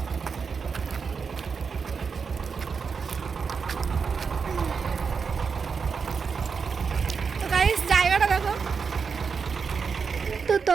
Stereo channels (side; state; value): left; quieter; 5.6 dB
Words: তো গাইস জায়গাটা দেখো। তো